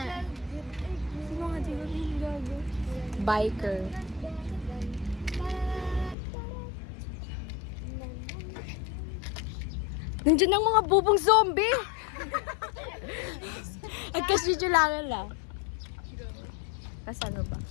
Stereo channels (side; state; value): right; drops out; at 6.2 s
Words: Biker. Nandiyan ang mga bubong zombie. Agkasvideo lang lang. Kasano ba?